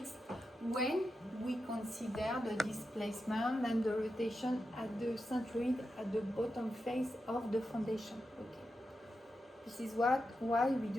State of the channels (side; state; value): both; normal; correlation 0.89